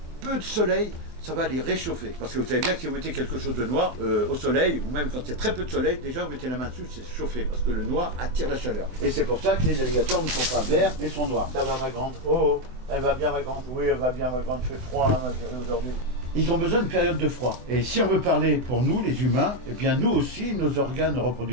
peu de soleil, ça va les réchauffer. Parce que vous savez bien que si vous mettez quelque chose de noir au soleil, ou même quand il y a très peu de soleil, déjà vous mettez la main dessus, c'est chauffé, parce que le noir attire la chaleur. Et c'est pour ça que les alligators ne sont pas verts, mais sont noirs. Ça va, ma grande? Oh, elle va bien, ma grande? Oui, elle va bien, ma grande. Il fait froid, hein, ma chérie, aujourd'hui. Ils ont besoin d'une période de froid. Et si on veut parler pour nous, les humains, eh bien nous aussi, nos organes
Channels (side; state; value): left; late; 24 ms